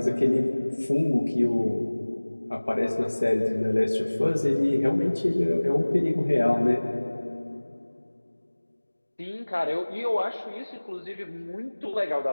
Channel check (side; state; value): both; inverted; correlation -1.00